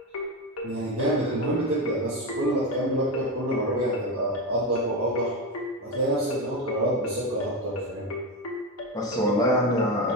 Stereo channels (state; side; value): normal; both; correlation 0.16